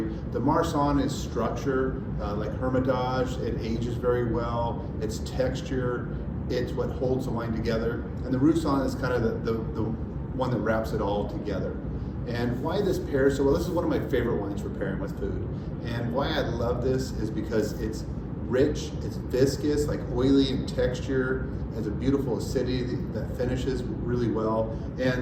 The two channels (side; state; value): both; identical; correlation 1.00